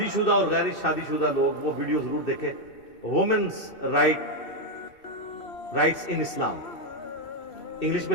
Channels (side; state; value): right; late; 2.6 ms